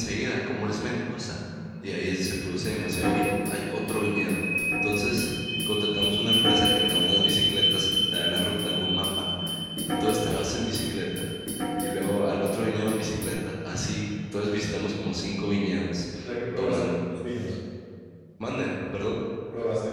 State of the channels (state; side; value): identical; both; correlation 1.00